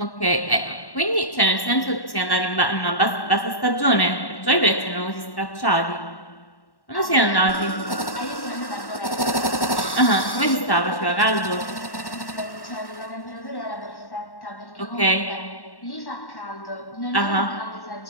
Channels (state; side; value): late; right; 1.1 ms